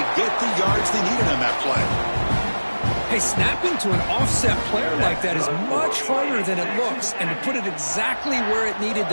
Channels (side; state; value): both; inverted; correlation -1.00